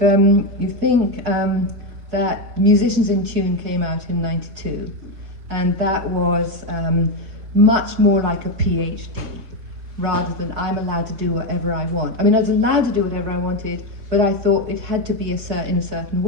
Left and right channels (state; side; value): late; left; 4.1 ms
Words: you think that Musicians in Tune came out in '92, and that was much more like a PhD, rather than I'm allowed to do whatever I want. I mean, I was allowed to do whatever I wanted, but I thought it had to be in a certain